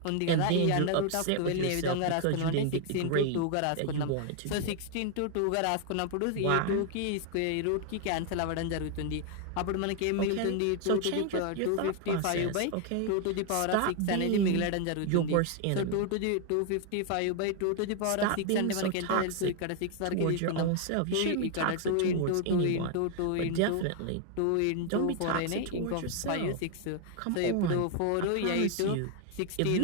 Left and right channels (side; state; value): both; different; correlation 0.00